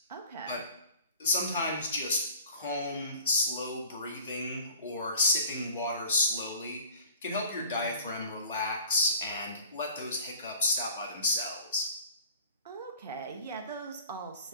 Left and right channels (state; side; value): inverted; both; correlation -0.47